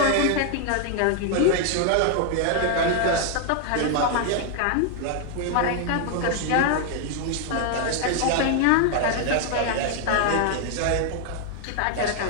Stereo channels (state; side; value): different; both; correlation 0.00